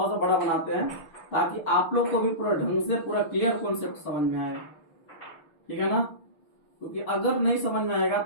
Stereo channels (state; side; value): late; right; 6.2 ms